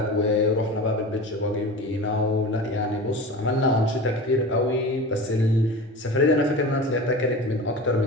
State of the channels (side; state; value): both; normal; correlation 0.32